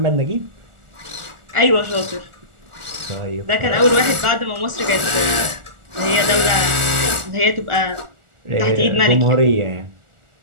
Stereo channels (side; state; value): left; late; 1.4 ms